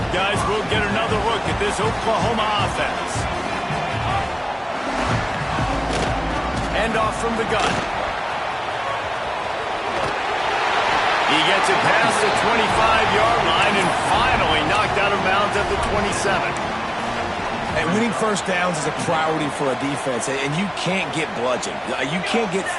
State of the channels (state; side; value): identical; both; correlation 1.00